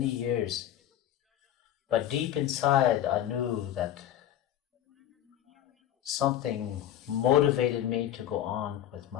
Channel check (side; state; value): right; quieter; 11.5 dB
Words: years. But deep inside, I knew that something motivated me to go on with